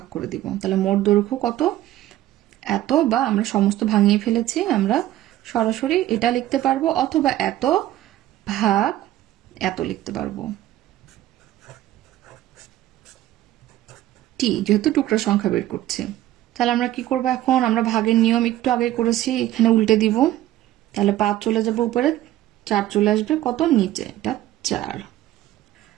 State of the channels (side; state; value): left; quieter; 14.4 dB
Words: করে দিব। তাহলে মোট দৈর্ঘ্য কত? এত, বা আমরা সমস্ত ভাঙিয়ে ফেলেছি, আমরা সরাসরি এটা লিখতে পারবো, অথবা এত ভাগ এত লিখতে পারবো, টি, যেহেতু টুকরা সংখ্যা বের করছি। তাহলে আমরা কি করবো? এখন আমরা ভাগের নিয়ম একটু আগে করেছি, এখানে উল্টে দিব। তাহলে 5 চলে যাবে উপরে, 4 চলে আসবে কত? নিচে, এটা 4।